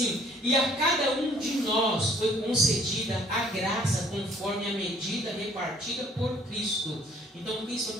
e a cada um de nós foi concedida a graça conforme a medida repartida por Cristo. Então Cristo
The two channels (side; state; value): both; normal; correlation 0.59